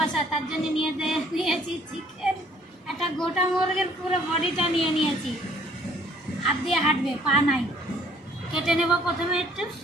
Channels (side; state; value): both; normal; correlation 0.60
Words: তার জন্য নিয়েছি চিকেন, একটা গোটা মুরগির পুরো বডিটা নিয়ে নিয়েছি। হাত দিয়ে হাঁটবে, পা নাই। কেটে নেব প্রথমে একটু